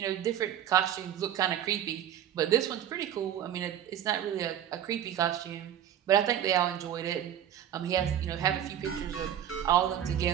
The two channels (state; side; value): quieter; left; 10.5 dB